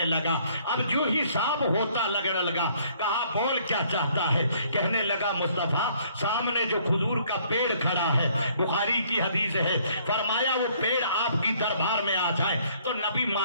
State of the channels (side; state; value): both; inverted; correlation -0.62